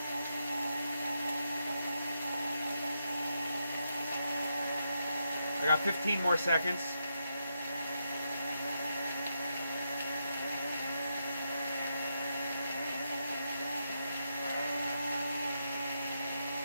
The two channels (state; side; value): inverted; both; correlation -0.83